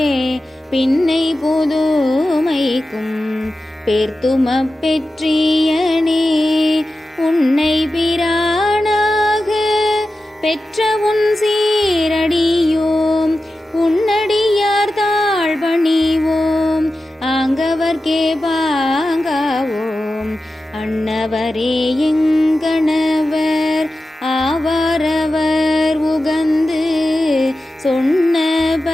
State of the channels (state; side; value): normal; both; correlation 0.93